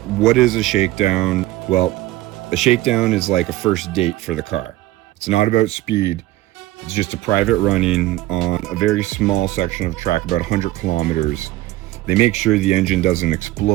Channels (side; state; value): left; quieter; 16.8 dB